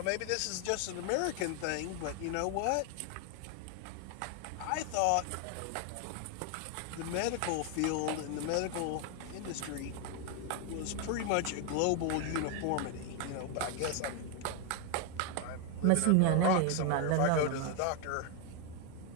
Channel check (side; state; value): both; different; correlation 0.01